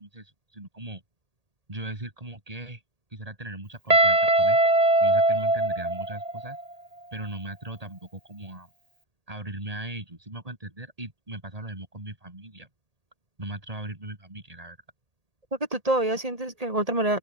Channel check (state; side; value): late; left; 1.8 ms